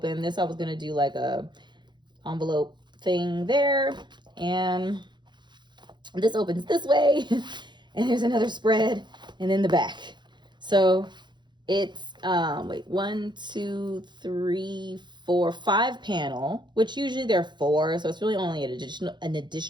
This I was gonna do like a envelope thing there, and this opens this way, and there's another spread, and then the back. So it's wait, 1, 2, 3, 4, 5 panel, which usually there are 4, so it's really only an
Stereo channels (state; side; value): late; left; 0.22 ms